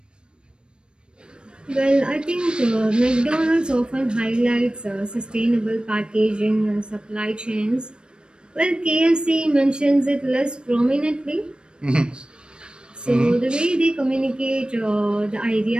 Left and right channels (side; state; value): left; late; 0.053 ms